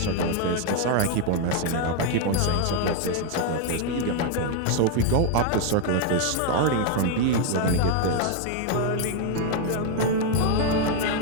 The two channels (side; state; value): both; different; correlation 0.00